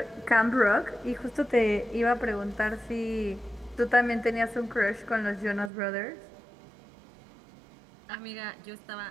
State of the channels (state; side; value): drops out; left; at 5.7 s